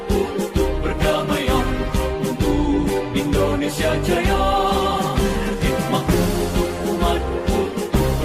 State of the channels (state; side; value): identical; both; correlation 1.00